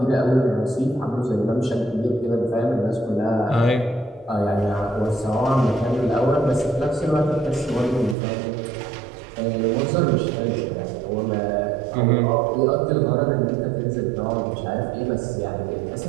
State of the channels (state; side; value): drops out; left; at 8.2 s